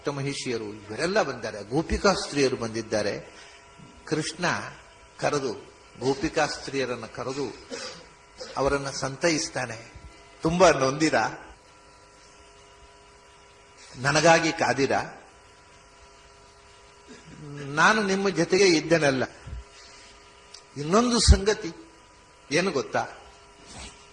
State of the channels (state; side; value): identical; both; correlation 1.00